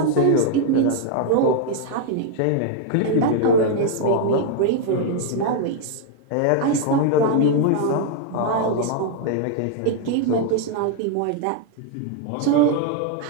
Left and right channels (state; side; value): different; both; correlation 0.00